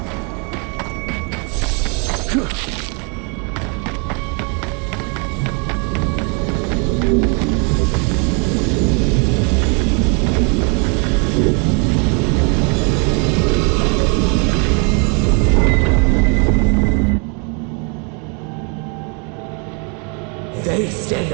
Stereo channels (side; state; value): left; quieter; 35.7 dB